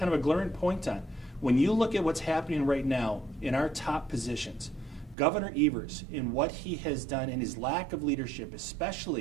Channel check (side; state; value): left; drops out; at 5.2 s